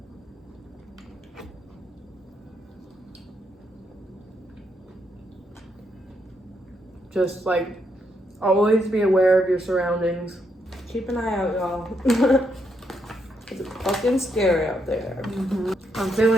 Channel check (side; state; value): both; normal; correlation 0.78